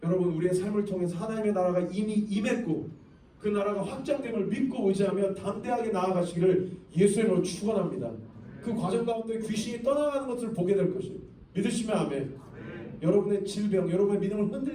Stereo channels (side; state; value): both; identical; correlation 1.00